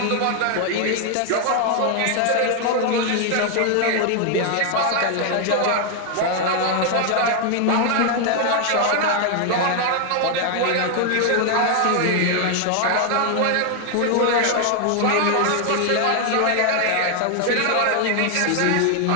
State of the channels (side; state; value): both; different; correlation 0.00